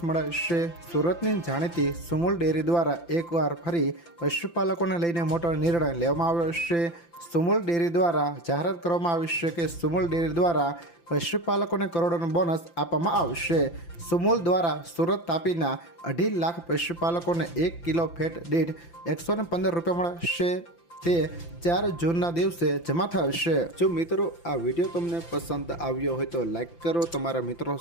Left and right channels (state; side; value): late; right; 5.9 ms